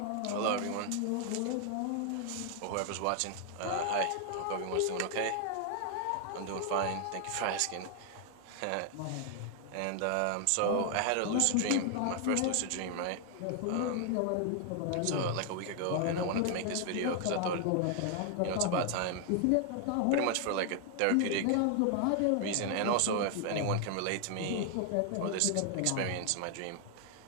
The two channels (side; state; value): both; different; correlation 0.00